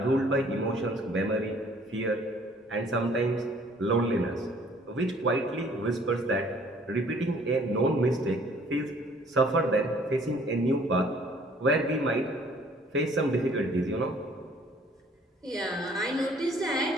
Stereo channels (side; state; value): both; normal; correlation 0.57